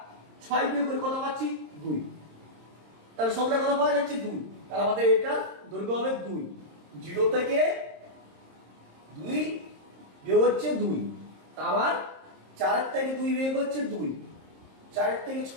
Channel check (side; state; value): left; late; 26 ms